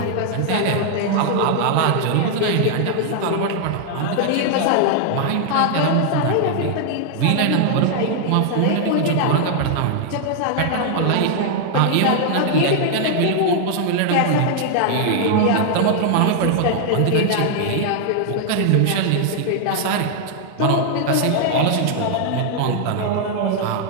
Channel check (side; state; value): both; different; correlation 0.00